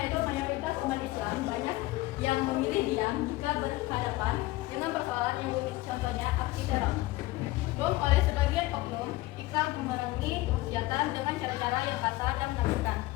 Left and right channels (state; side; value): quieter; right; 18.9 dB